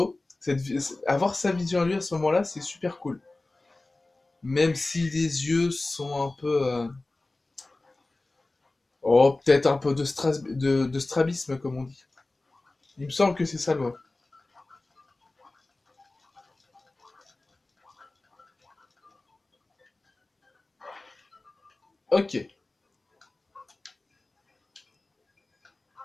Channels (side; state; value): right; quieter; 3.0 dB